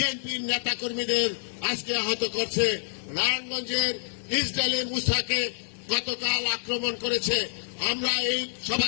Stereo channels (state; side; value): silent; right; digital silence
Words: নেতা কর্মীদের আজকে আহত করছে। নারায়ণগঞ্জের ইসরায়েলি মুসাকে গতকাল আক্রমণ করেছে। আমরা এই